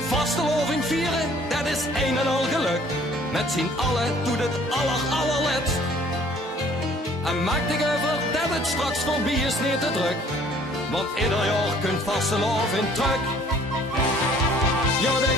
Vasteloving vieren, dat is een en al geluk. Met z'n allen doet het allerletst. En maak dich over dat het straks voorbij is niet te druk. Want ieder jaar kunt vasteloving terug. Ja,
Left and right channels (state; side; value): normal; both; correlation 0.56